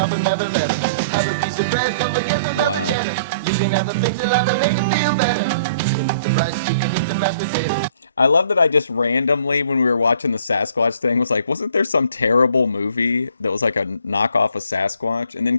and never let it. Have a piece of bread, don't forget about the cheddar. You can have the things that love and make it feel better. You can eat the rice, you can eat the mashed potatoes. I love that I just randomly, when we were watching the Sasquatch thing, was like, wasn't there some terrible movie that was like a knockoff of Sasquatch? And then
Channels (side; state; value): both; inverted; correlation -0.57